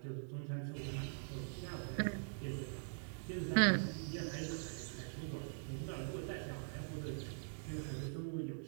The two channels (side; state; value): left; silent; digital silence